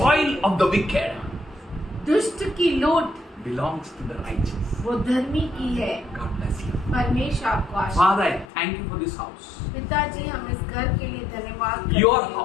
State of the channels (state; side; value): drops out; right; at 8.5 s